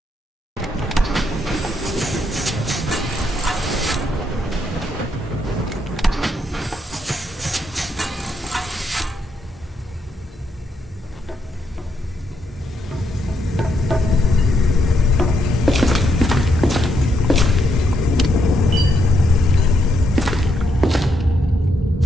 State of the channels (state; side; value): normal; both; correlation 0.78